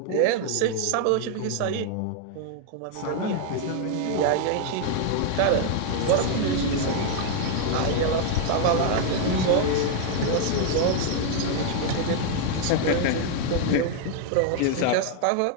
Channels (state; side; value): different; both; correlation 0.00